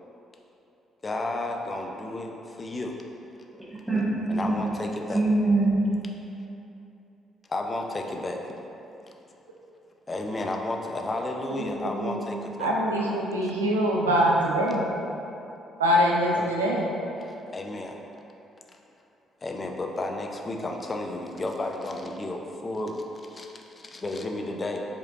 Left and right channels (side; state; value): both; normal; correlation 0.64